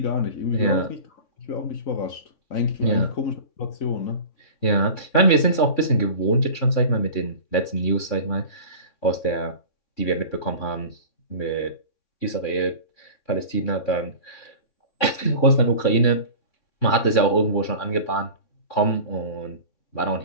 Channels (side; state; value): right; late; 3.6 ms